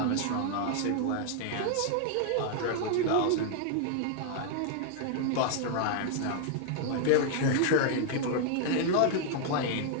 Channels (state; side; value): different; both; correlation 0.00